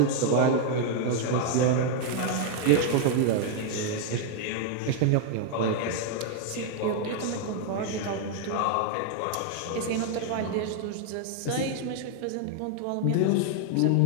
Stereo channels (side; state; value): both; different; correlation 0.00